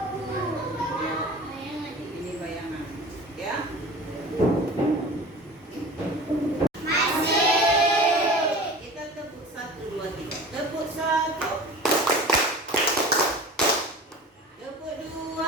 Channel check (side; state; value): both; normal; correlation 0.38